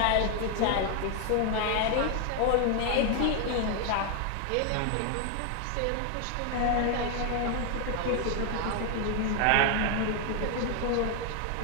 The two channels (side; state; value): both; different; correlation 0.01